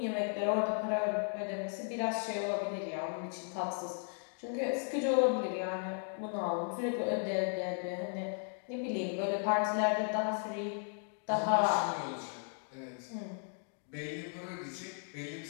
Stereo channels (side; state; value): right; silent; 54 dB below the other